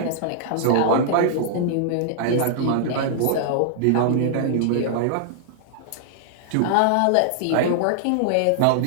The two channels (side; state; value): both; different; correlation -0.01